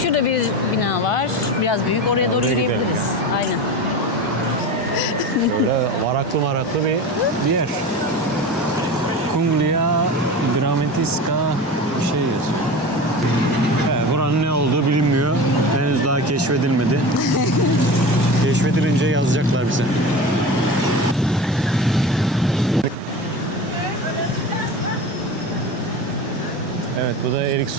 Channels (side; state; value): both; normal; correlation 0.30